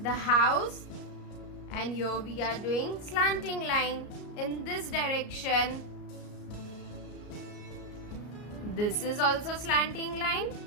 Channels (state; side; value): late; right; 33 ms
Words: house, and here we are doing slanting line in this direction. This is also slanting line.